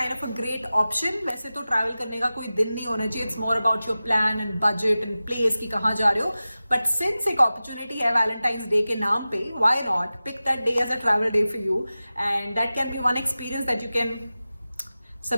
of a great option. वैसे तो ट्रैवल करने का कोई दिन नहीं होना चाहिए. It's more about your plan and budget and place कि कहाँ जा रहे हो. बट सिंस एक अपॉर्चुनिटी है वैलेंटाइंस डे के नाम पे, why not pick that day as a travel day for you, and that can be one experience that you can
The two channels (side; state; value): both; inverted; correlation -0.96